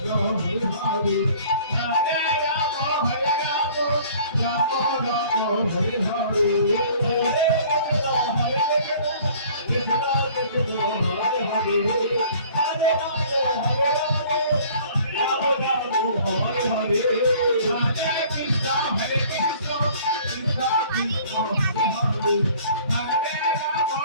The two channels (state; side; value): inverted; both; correlation -0.52